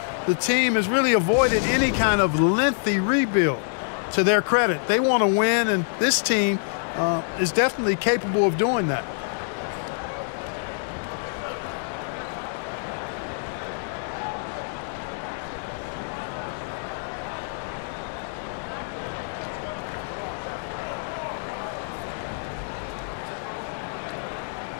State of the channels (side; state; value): right; silent; digital silence